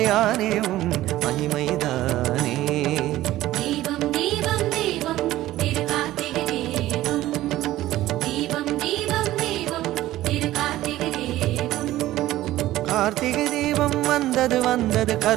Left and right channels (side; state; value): left; quieter; 15.4 dB